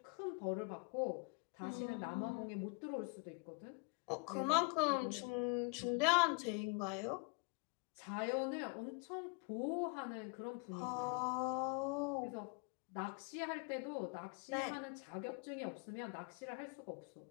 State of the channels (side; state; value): right; quieter; 33.0 dB